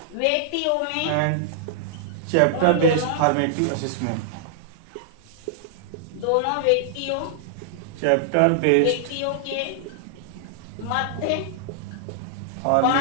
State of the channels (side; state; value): both; different; correlation -0.01